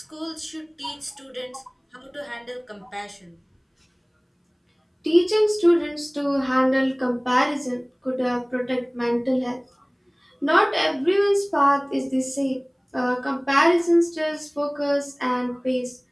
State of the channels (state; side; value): identical; both; correlation 1.00